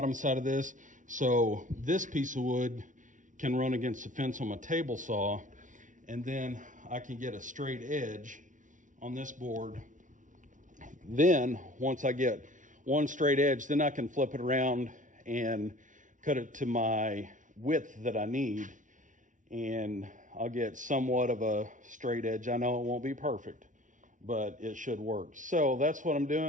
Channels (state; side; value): late; left; 0.37 ms